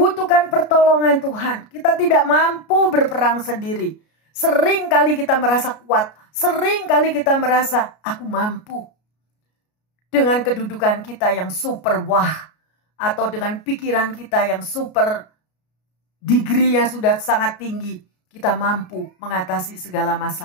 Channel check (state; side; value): late; right; 33 ms